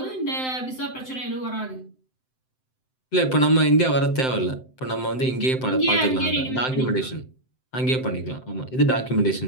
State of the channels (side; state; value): right; late; 7.8 ms